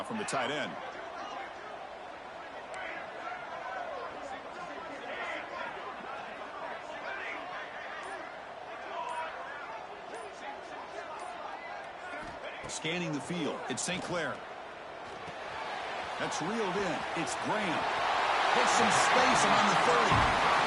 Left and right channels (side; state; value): both; identical; correlation 1.00